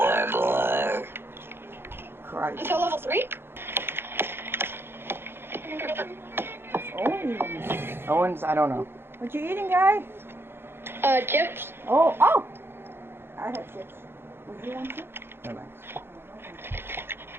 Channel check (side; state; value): left; late; 0.11 ms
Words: more. Christ. Until level 3? Owens, I don't know. What you eating, guy? Chips. Oh. I have chips. Would you want chips? No, thanks.